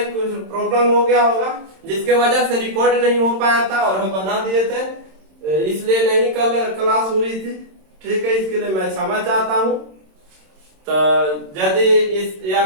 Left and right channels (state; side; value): late; left; 26 ms